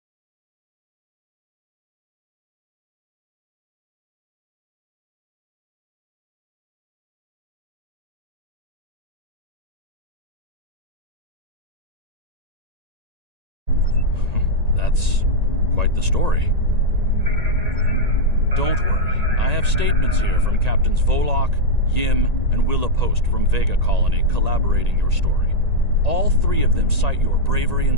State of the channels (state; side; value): late; left; 1.8 ms